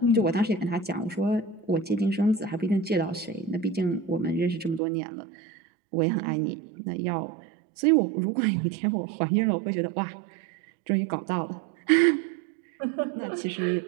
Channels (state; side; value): drops out; left; at 4.8 s